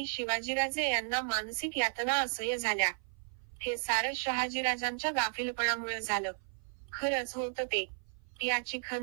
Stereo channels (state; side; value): silent; left; 55 dB below the other